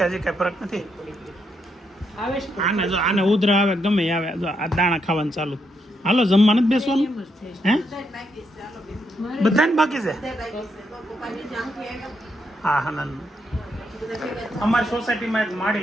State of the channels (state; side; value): normal; both; correlation 0.79